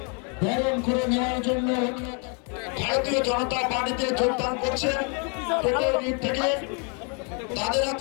বরণ করে নেওয়ার জন্য ভারতীয় জনতা পার্টিতে যোগদান করছেন টোটোর দিক থেকে। তাদের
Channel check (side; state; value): right; quieter; 36.8 dB